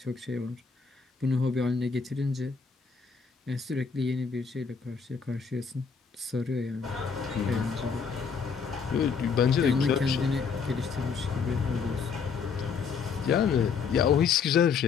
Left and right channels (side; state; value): right; quieter; 5.8 dB